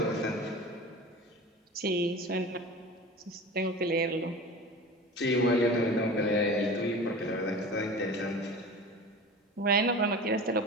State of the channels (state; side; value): normal; both; correlation 0.35